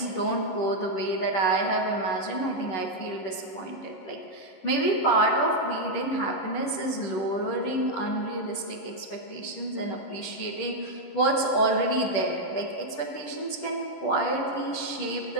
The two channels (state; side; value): late; right; 11 ms